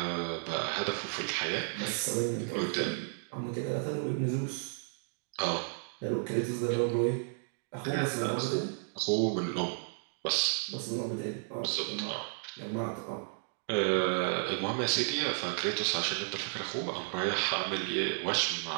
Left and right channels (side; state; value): left; silent; digital silence